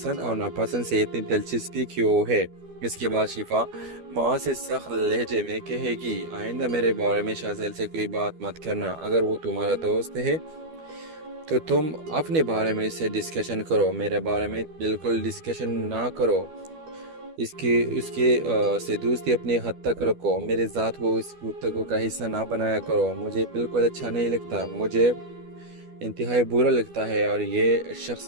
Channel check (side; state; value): left; late; 12 ms